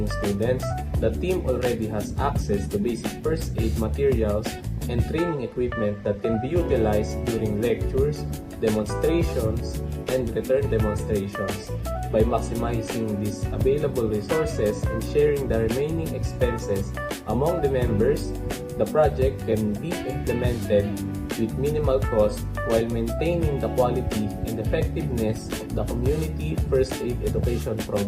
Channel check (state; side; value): identical; both; correlation 1.00